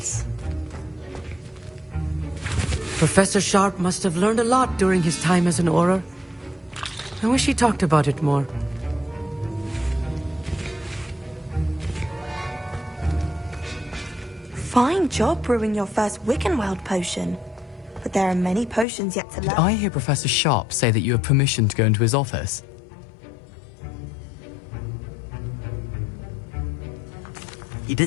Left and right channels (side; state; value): right; drops out; at 18.9 s